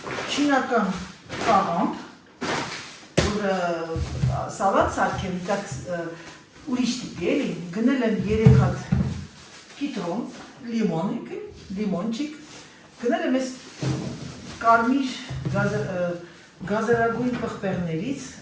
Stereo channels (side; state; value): both; identical; correlation 1.00